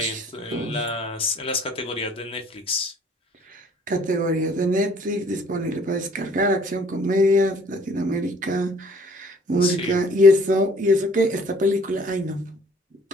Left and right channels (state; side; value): normal; both; correlation 0.57